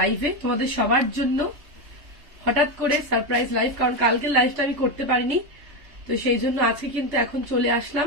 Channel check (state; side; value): late; left; 3.2 ms